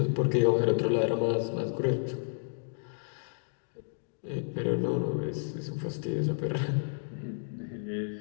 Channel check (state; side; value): silent; right; digital silence